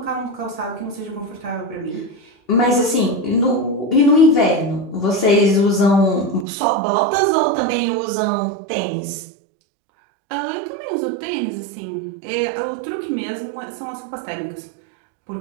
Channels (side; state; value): left; drops out; at 6.5 s